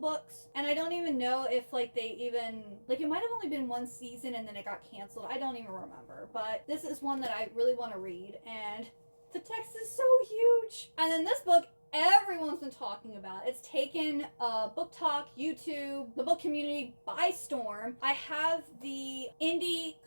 And I don't even know if like they even, like it might have only been 1 season and then it got canceled. I don't even remember. But this is one that I really want to read, and the text is so huge. And then this book, everyone's been talking about. It's taken Book Talk, YouTube, the book community by storm. I have the indie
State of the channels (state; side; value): inverted; both; correlation -1.00